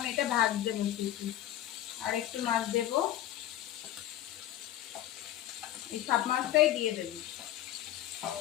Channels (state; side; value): quieter; right; 12.8 dB